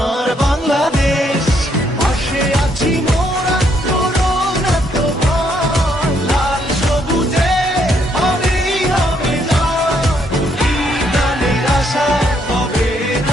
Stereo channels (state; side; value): normal; both; correlation 0.72